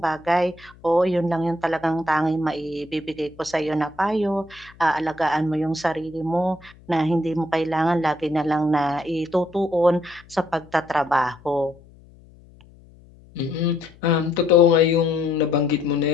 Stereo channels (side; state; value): left; noise; hum, 25 dB below the sound